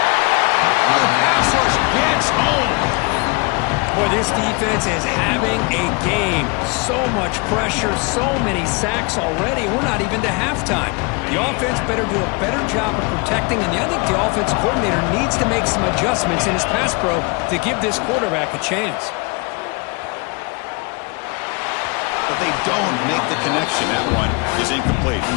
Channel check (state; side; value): quieter; right; 30.3 dB